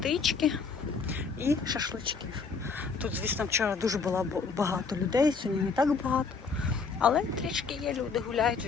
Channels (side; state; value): right; quieter; 5.0 dB